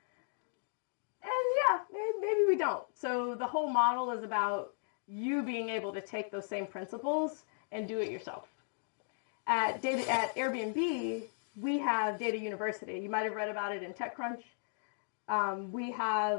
And yeah, maybe we don't. So the whole model is about you being able to take those same principles and do it yourself. At Airbnb, we have Data University. You might have read about it in TechCrunch. We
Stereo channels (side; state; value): right; silent; digital silence